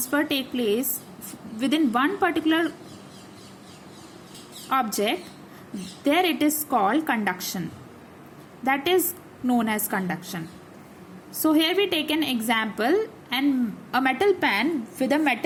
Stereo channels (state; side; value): identical; both; correlation 1.00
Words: takes place within one particular object, there it is called conduction. That is known as conduction. So here we take an example, and a metal pen with a